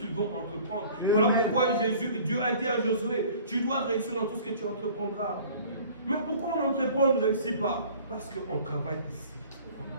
vont entreprendre. Voilà pourquoi Dieu a dit à Josué, tu dois réussir dans tout ce que tu entreprendras. Mais pourquoi on entreprend, on ne réussit pas? Parce qu'on travaille ici.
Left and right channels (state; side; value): inverted; both; correlation -0.49